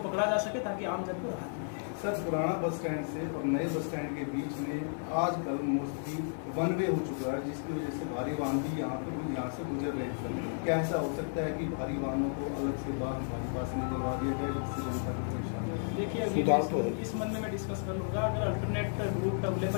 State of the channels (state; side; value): silent; right; digital silence